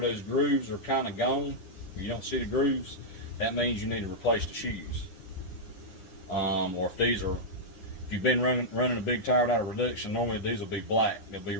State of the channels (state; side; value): late; right; 10 ms